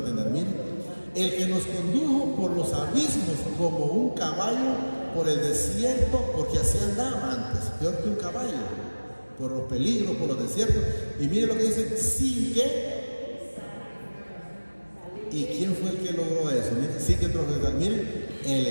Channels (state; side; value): inverted; both; correlation -1.00